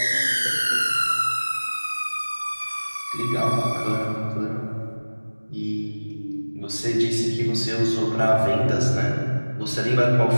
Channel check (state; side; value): inverted; both; correlation -1.00